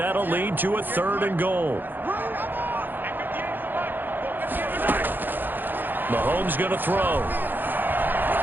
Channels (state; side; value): late; left; 0.091 ms